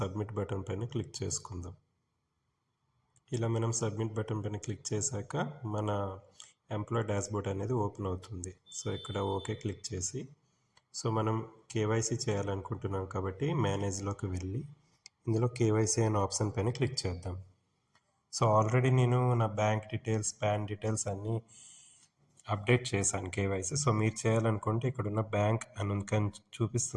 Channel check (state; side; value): identical; both; correlation 1.00